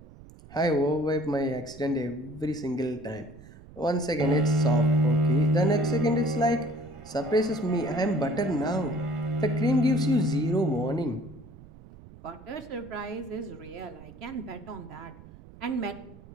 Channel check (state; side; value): noise; right; rumble, 20 dB below the sound